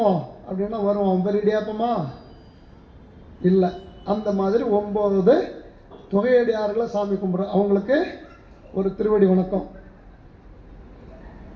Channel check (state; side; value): identical; both; correlation 1.00